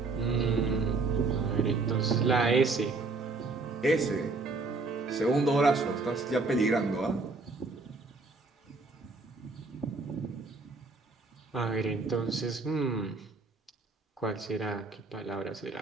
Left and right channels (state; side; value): quieter; left; 3.7 dB